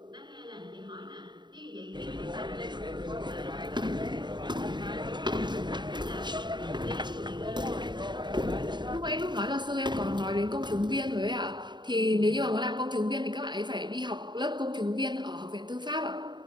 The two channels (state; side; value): late; left; 0.22 ms